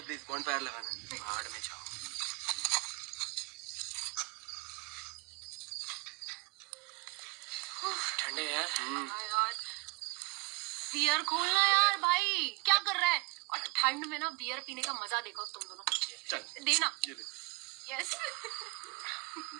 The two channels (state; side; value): quieter; left; 27.9 dB